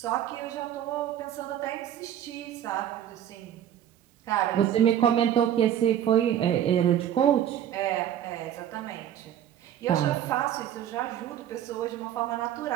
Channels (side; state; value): left; quieter; 10.6 dB